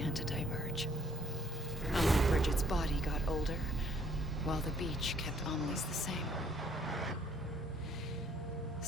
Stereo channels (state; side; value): normal; both; correlation 0.64